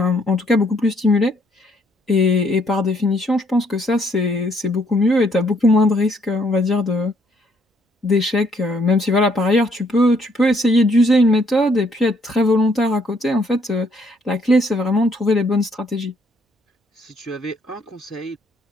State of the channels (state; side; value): normal; both; correlation 0.68